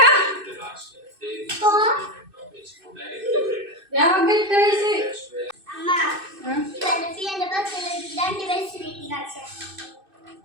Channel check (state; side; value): late; left; 2.6 ms